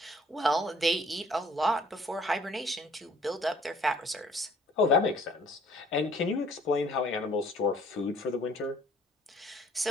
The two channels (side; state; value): both; normal; correlation 0.57